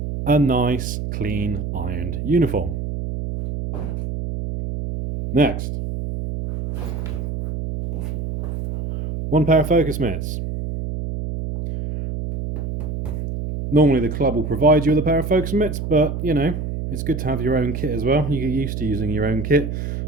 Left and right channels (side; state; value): right; noise; hum, 4 dB below the sound